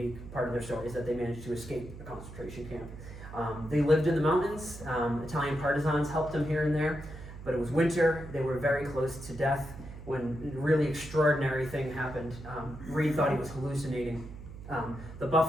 part of their story is that they managed to escape a concentration camp. They lived in the mountains. Italian partisans helped them here and there, but it was winter. They were very close to death when a really extraordinary thing happened. Reed thought he was hallucinating. The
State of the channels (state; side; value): noise; right; hum, 13 dB below the sound